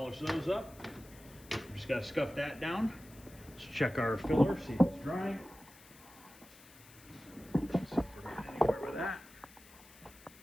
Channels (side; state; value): left; noise; hiss, 22 dB below the sound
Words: those up. Just got to scuff that down. Let's check our filler, see if it's drying. See if we're getting anywhere with that.